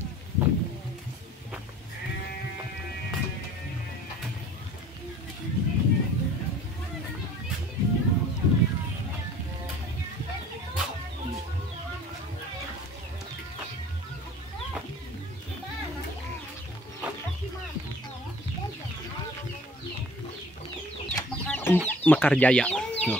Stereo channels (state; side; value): normal; both; correlation 0.49